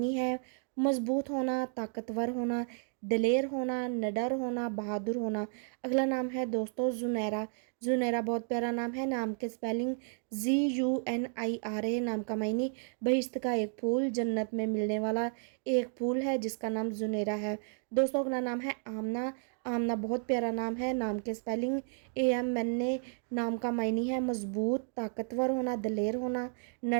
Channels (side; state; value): left; silent; 56 dB below the other